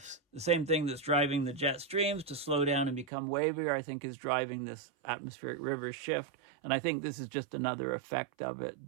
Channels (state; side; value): drops out; left; at 3.1 s